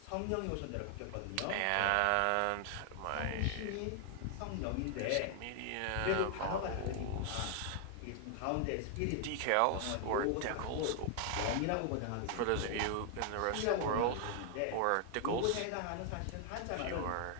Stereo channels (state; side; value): different; both; correlation 0.00